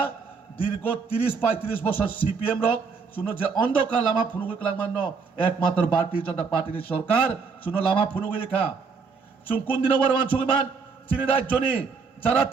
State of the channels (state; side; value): quieter; left; 5.1 dB